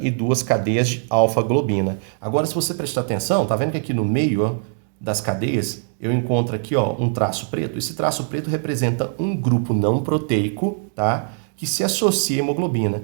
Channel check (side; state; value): left; silent; 58 dB below the other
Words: e 2 cadeias de alfa-globina. Agora, se você prestar atenção, tá vendo que aqui no meio ó, das cadeias eu encontro aqui ó, um traço preto? Esse traço preto representa um grupo não proteico, tá? Que se associa à